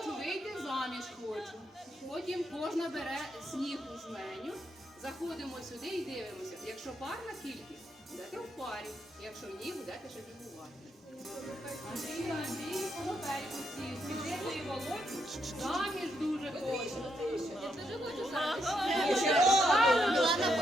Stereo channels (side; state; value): both; normal; correlation 0.79